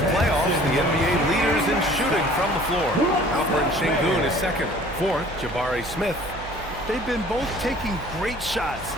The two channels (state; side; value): noise; right; hum, 14 dB below the sound